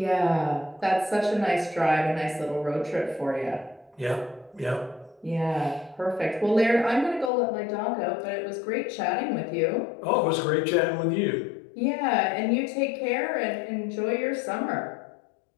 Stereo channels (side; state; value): right; drops out; at 7.3 s